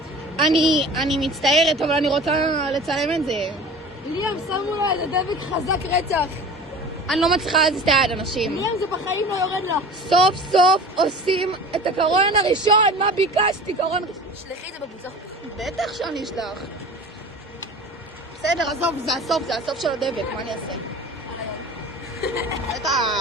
אני מצטערת, אבל אני רוצה לצלם את זה. ליאם, שמו לה איזה דבק חזק רצח. אני לא מצליחה להזיז את היד, אנשים. ליאם, זה בחיים לא יורד לה. סוף סוף עושים את הקרון הראשון, מה ביקשתי? קרון ראשון. שלחי את זה בקבוצה. בטח שאני אשלח. בסדר, עזוב, זה הסוף של הדבק, מה אני אעשה?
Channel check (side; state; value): both; normal; correlation 0.39